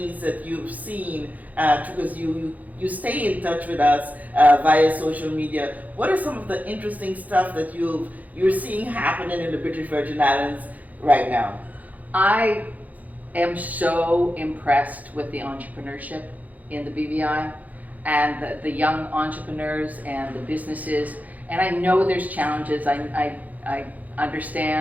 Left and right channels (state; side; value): late; left; 0.078 ms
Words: that you've seen? Because you stay in touch with us via social media. What are some of the interesting stuff that you're seeing happening in the British Virgin Islands right now? I am so impressed with the entrepreneurship in the BVI and the young entrepreneurs and the businesses. And I know there's challenges. I